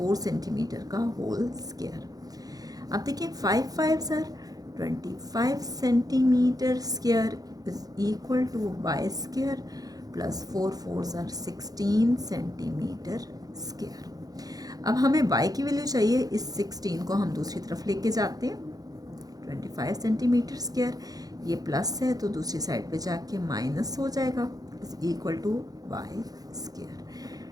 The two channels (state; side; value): late; left; 0.18 ms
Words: सेंटीमीटर का होल स्क्वायर। अब देखिए 5 5 सर 25 centimetre square is equal to Y square plus 4 4 सर 16 सेंटीमीटर स्क्वायर। अब हमें y की वैल्यू चाहिए, इस 16 को हम दूसरी तरफ लेके जाते हैं। 25 सेंटीमीटर स्क्वायर, ये प्लस है तो दूसरी साइड पे जाके माइनस हो जाएगा, is equal to Y square.